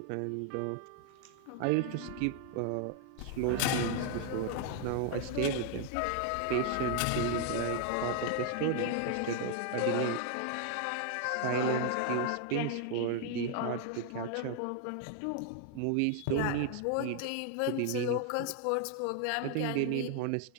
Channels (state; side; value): different; both; correlation 0.00